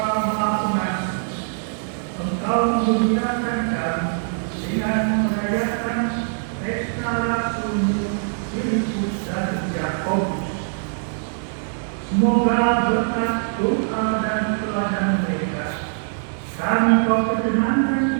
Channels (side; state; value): left; silent; digital silence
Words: Maha Pengasih, Engkau memuliakan kami dengan merayakan pesta rasul Filipus dan Yakobus. Semoga berkat doa dan teladan mereka, kami kau